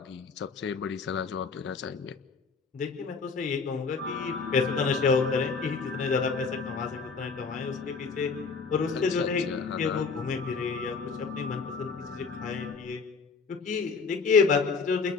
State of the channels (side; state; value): right; quieter; 4.9 dB